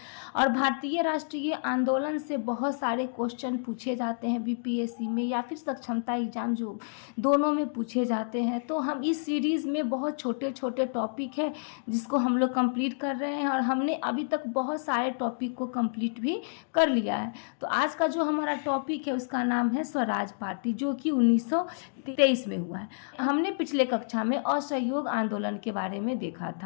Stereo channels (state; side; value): silent; right; digital silence